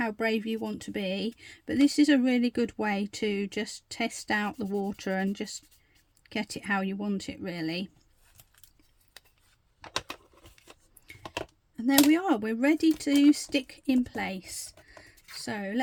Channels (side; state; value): both; identical; correlation 1.00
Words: brave you want to be, but this is a really good way to just test out the water and just get it how you want it, really. And there we are, we're ready to stick in place. So